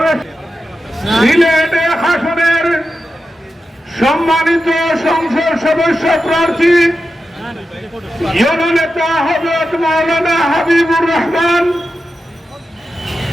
সিলেট আসনের সম্মানিত সংসদ সদস্য প্রার্থী জননেতা হযরত মাওলানা হাবিবুর রহমান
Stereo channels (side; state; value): both; normal; correlation 0.91